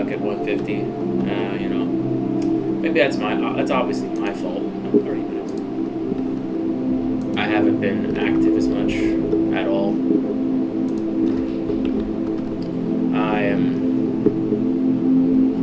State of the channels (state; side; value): identical; both; correlation 1.00